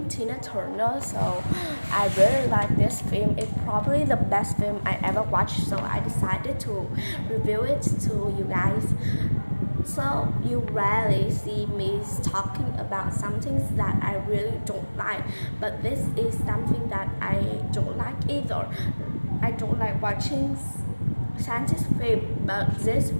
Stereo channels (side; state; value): both; inverted; correlation -1.00